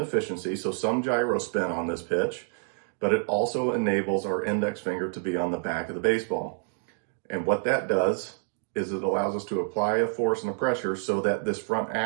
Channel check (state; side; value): silent; left; 60 dB below the other